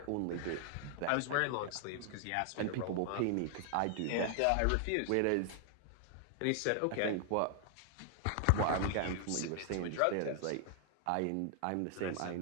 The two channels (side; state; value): both; different; correlation 0.00